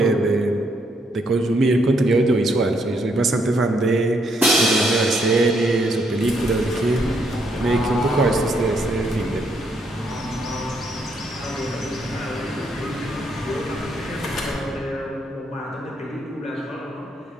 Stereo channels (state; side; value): normal; both; correlation 0.74